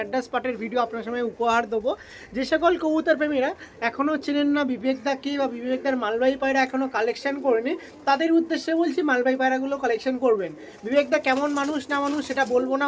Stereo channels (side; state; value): both; identical; correlation 1.00